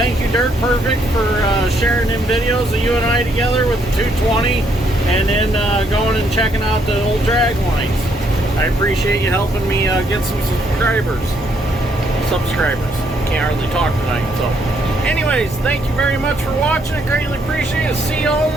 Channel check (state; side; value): normal; both; correlation 0.71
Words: you, Dirt Perfect, for sharing them videos of you and I together with the 220, and then going and checking out the old drag lines. I appreciate you helping me get some subscribers. Can't hardly talk tonight. So anyways, thank you very much for watching. I greatly appreciate it. See you all in